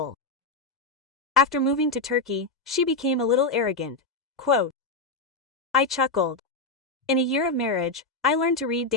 After moving to Turkey, she became a little arrogant." Quote. I chuckled. In a year of marriage, I learned to read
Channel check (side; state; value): right; quieter; 3.4 dB